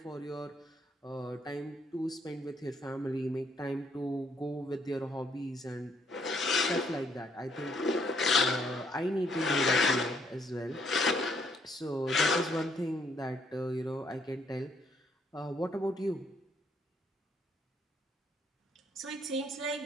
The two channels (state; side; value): normal; both; correlation 0.69